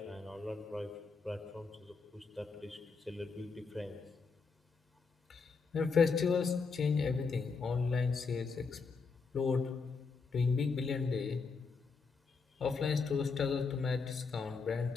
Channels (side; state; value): right; quieter; 4.8 dB